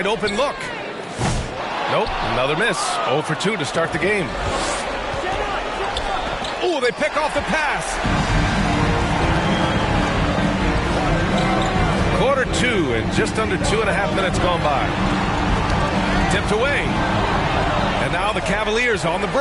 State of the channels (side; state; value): both; identical; correlation 1.00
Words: open look. Nope, another miss. 0 for 2 to start the game. Oh, they pick off the pass. Quarter 2 and just under 2.5 minutes gone by. Tipped away. And now the Cavaliers on the